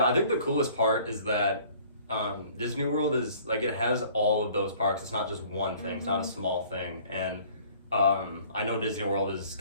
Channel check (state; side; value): inverted; both; correlation -0.53